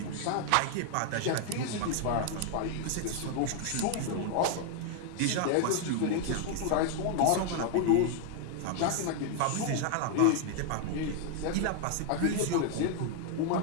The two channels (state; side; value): different; both; correlation 0.00